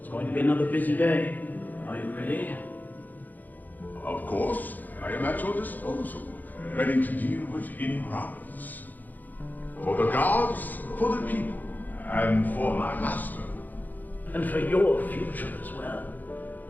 going to be another busy day. Are you ready? Of course, I am at your disposal, ready to deal with any problems. For the gods, for the people, and for my master. And for your future as well.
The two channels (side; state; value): right; late; 0.084 ms